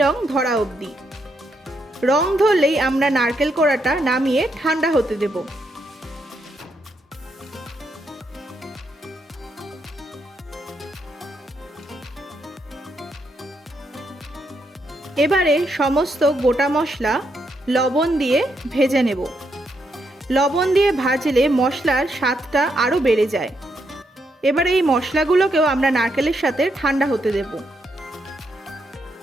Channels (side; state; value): both; normal; correlation 0.79